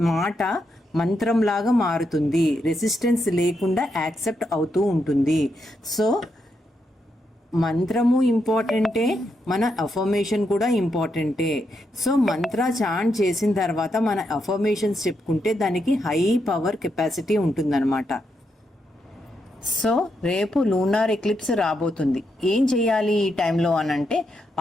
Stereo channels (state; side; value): normal; both; correlation 0.82